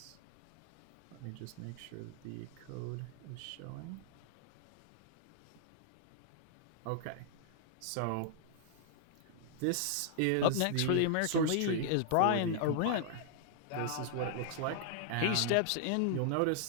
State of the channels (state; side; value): different; both; correlation -0.01